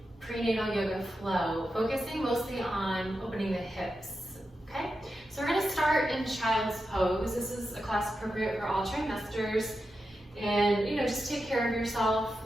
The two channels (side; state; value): both; normal; correlation 0.89